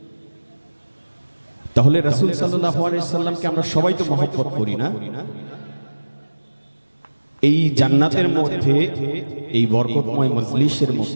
তাহলে রাসূল সাল্লাল্লাহু আলাইহি ওয়াসাল্লামকে আমরা সবাই তো মহব্বত করি না? এই জান্নাতের মধ্যে, এই বরকতময় মজলিসের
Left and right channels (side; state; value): both; inverted; correlation -1.00